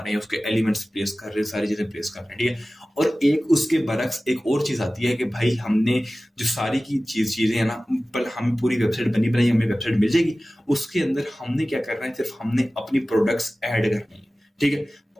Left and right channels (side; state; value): both; normal; correlation 0.97